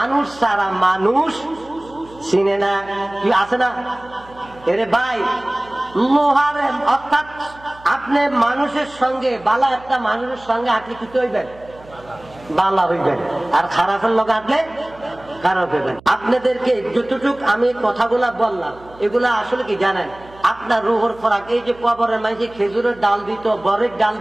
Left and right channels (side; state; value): right; noise; hum, 23 dB below the sound